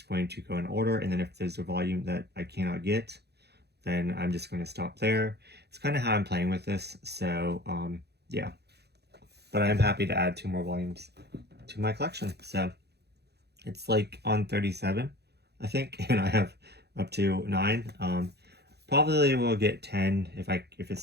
going to go in order, and then if there's a volume that I cannot get, then I'm just going to stop there. It's kind of how I'm playing with this, so yeah. But I'm happy to add 2 more volumes to my collection. So it's like on 37, I think, and I have up to 9. Probably will get 10 if it's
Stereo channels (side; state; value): left; late; 0.48 ms